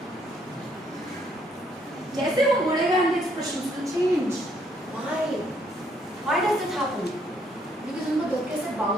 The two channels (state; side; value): normal; both; correlation 0.69